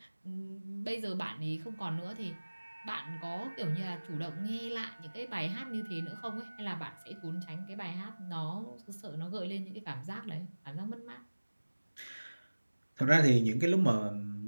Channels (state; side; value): inverted; both; correlation -1.00